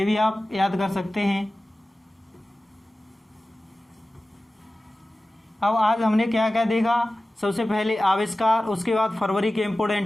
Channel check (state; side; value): normal; both; correlation 0.96